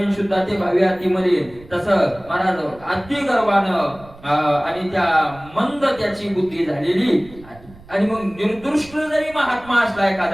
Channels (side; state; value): right; noise; rumble, 22 dB below the sound